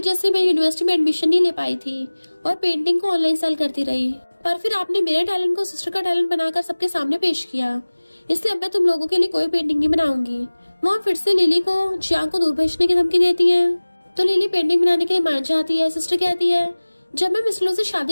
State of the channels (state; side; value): inverted; both; correlation -1.00